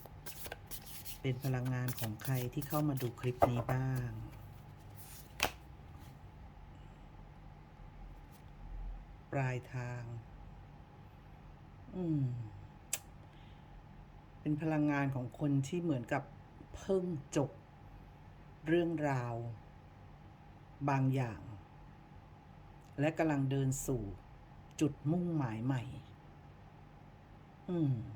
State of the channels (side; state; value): both; identical; correlation 1.00